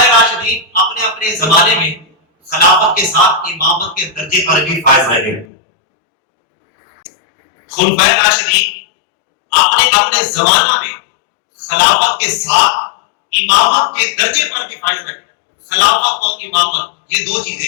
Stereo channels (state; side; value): drops out; right; at 5.5 s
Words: راشدین اپنے اپنے زمانے میں خلافت کے ساتھ امامت کے درجے پر بھی فائز رہے۔ خلفائے راشدین اپنے اپنے زمانہ میں خلافت کے ساتھ امامت کے درجے پر بھی فائز رہے۔ خلافت اور امامت یہ دو